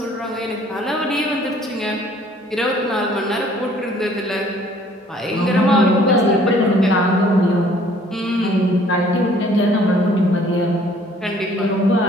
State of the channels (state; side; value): normal; both; correlation 0.58